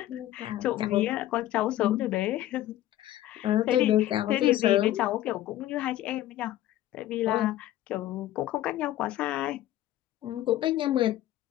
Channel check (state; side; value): quieter; right; 13.9 dB